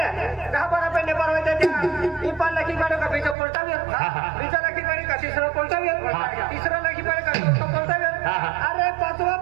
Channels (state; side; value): drops out; left; at 3.4 s